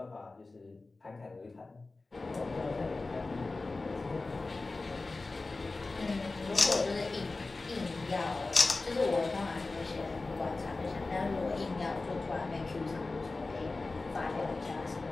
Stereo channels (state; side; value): quieter; right; 3.5 dB